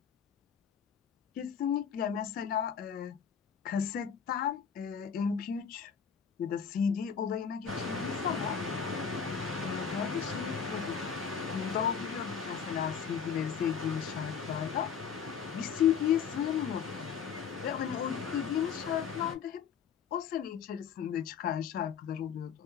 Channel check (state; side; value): quieter; right; 7.2 dB